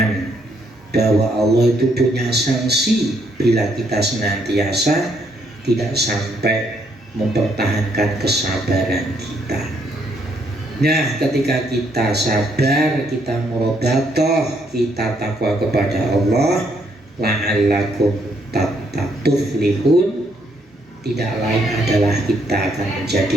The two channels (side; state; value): both; normal; correlation 0.72